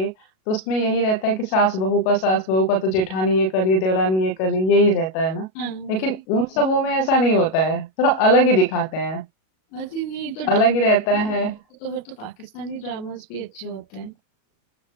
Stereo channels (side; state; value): right; late; 37 ms